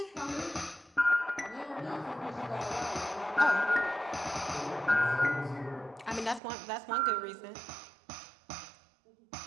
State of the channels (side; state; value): left; drops out; at 6.4 s